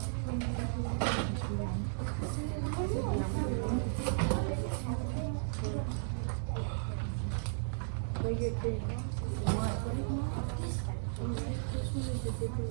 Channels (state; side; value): silent; left; digital silence